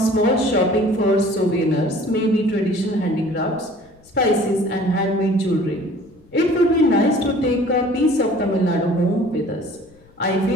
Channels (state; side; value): noise; left; rumble, 29 dB below the sound